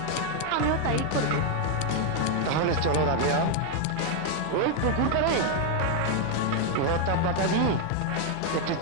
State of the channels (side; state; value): both; different; correlation 0.01